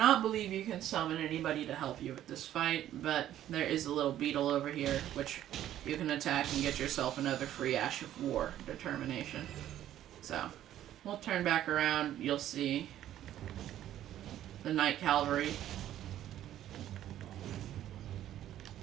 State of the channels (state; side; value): quieter; left; 12.1 dB